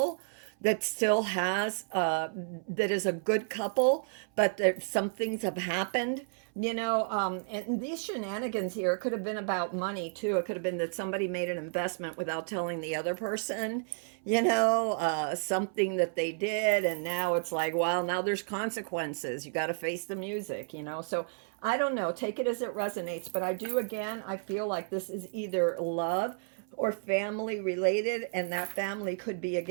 that still has, that is a good couple, but there, some things have happened, and these shenanigans here, it could have been about money too. It could have been that somebody made an investment without telling the other person, something that they did, and now it's like, well, now there's consequences. You got to face the music. So I don't know. Take it as it resonates. But I feel like this is either love or family related, and that family could be,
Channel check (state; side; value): silent; left; 56 dB below the other